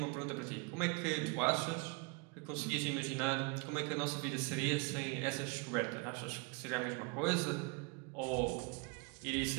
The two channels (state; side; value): quieter; left; 31.3 dB